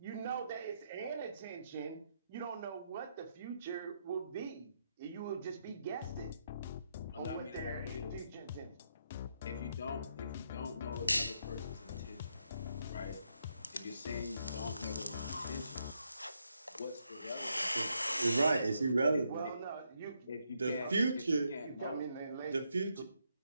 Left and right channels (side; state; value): both; inverted; correlation -0.79